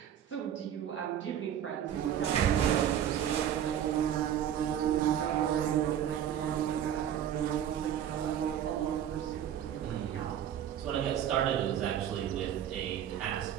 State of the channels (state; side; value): quieter; left; 10.1 dB